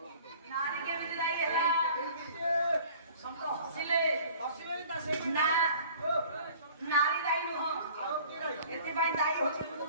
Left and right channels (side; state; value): both; inverted; correlation -0.49